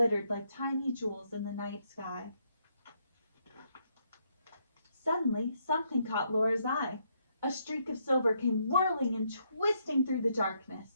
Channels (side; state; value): both; inverted; correlation -0.75